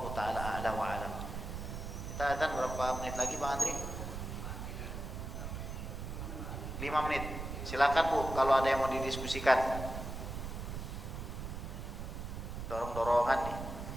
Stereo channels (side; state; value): right; noise; rumble, 6 dB below the sound